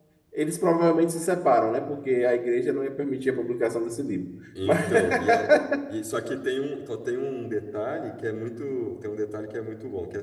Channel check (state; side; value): identical; both; correlation 1.00